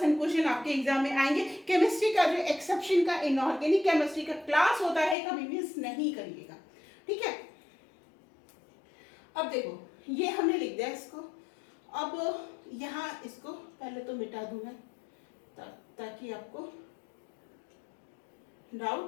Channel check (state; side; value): drops out; right; at 5.2 s